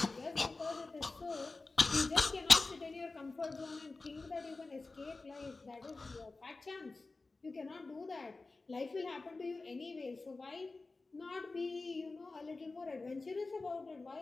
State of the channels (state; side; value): quieter; right; 3.6 dB